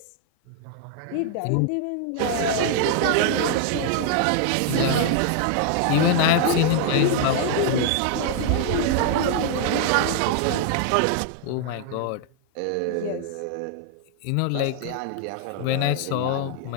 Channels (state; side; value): different; both; correlation 0.00